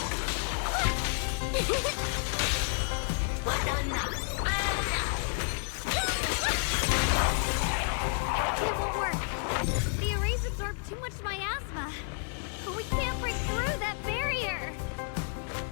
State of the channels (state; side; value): silent; right; 57 dB below the other